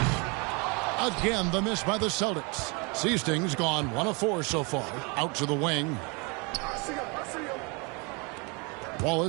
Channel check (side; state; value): left; quieter; 30.7 dB